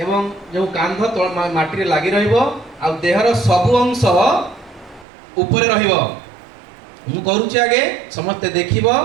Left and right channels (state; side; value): drops out; left; at 5.1 s